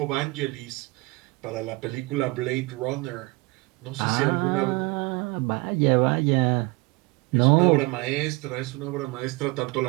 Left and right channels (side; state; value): left; quieter; 24.4 dB